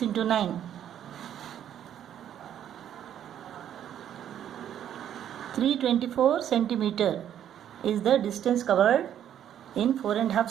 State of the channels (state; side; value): quieter; left; 10.2 dB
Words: into 9. 324 centimeter is the distance covered in 4.5